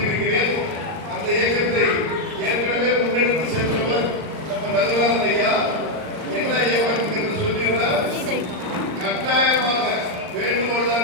அந்த இயக்கத்தை ஏற்கனவே முன்னெடுத்து சென்றவர் நம்ம நகராஜன் ஐயா என்ன இயக்கம் என்று சொல்லிடுறார். கட்டாயமாக வேண்டுகோள்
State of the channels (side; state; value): left; late; 39 ms